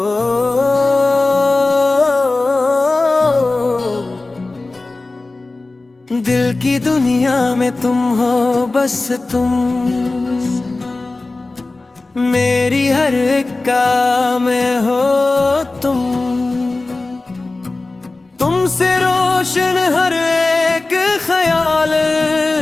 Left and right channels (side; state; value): right; quieter; 3.3 dB